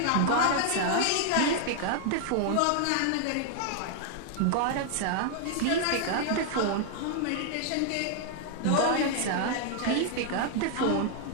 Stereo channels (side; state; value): both; different; correlation 0.00